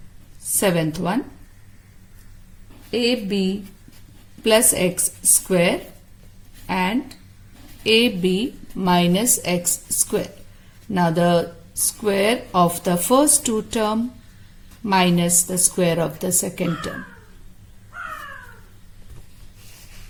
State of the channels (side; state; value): both; identical; correlation 1.00